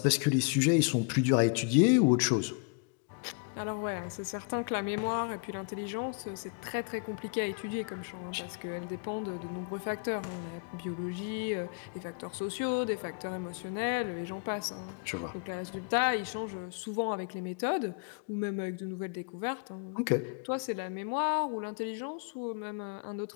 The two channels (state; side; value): quieter; right; 37.3 dB